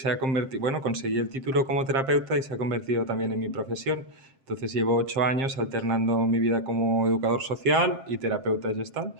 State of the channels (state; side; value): late; left; 7.5 ms